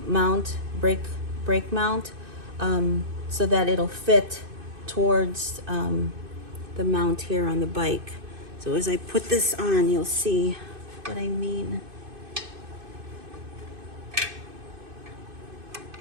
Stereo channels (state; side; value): late; left; 2.5 ms